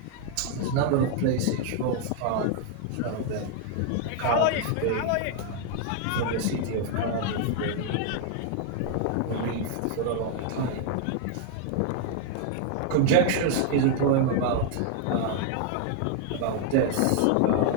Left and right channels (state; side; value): different; both; correlation 0.00